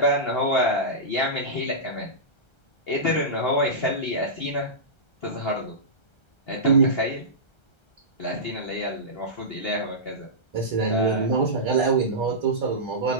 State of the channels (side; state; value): right; late; 1.3 ms